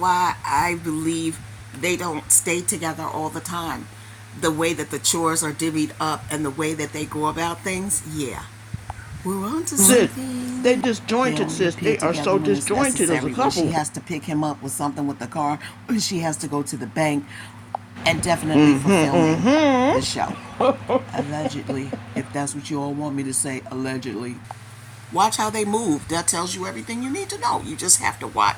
I believe they don't stay together all the time. The way that the chores are divvied up and the way that they go about things, yeah. We're on to Sis, something. they disjointed, sis. They are so disjointed as a When couple. she has to pick him up with something with the car, when she has to go to the bank, and definitely for filming the show. Allegedly, if that's what you all want me to say, allegedly. Watch how they move. That tells you everything you need to know. You just have to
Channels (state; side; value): identical; both; correlation 1.00